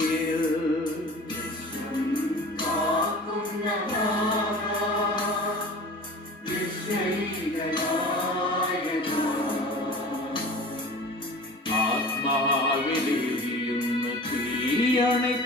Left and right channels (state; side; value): normal; both; correlation 0.40